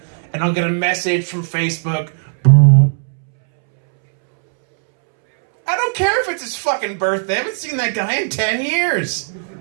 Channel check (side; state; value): left; silent; 68 dB below the other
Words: and I'll get a message from Facebook. I don't care if it's his fucking birthday. I haven't seen that guy in 10 years.